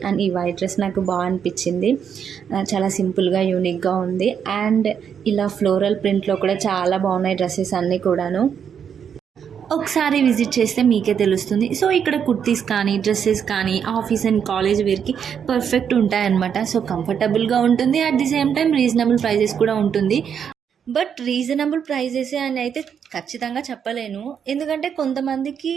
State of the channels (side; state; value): left; quieter; 7.7 dB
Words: అండ్ ఈ వైట్ డ్రెస్ నాకు బాగా అనిపించింది. చాలా సింపుల్గా యూనిక్గా ఉంది. అండ్ ఇలా ఫ్లోరల్ ప్రింట్లో కూడా చాలా బాగున్నాయి డ్రెస్సెస్ అన్నీ కూడాను. ఒకసారి విజిట్ చేస్తే మీకే తెలుస్తుంది. సో ఇక్కడ కుర్తీస్ కానీ డ్రెస్సెస్ కానీ ఆఫీస్ అండ్ కాలేజ్ వేర్కి పర్ఫెక్ట్ ఉంటాయన్నమాట. సో కంఫర్టబుల్గా ఉంటుంది. At the same time reasonable prices కూడా ఉంటుంది. బట్ రీజనబుల్ ప్రైజెస్ అని అయితే ఖచ్చితంగా చెప్పలేను. ఎందుకంటే కొంతమందికి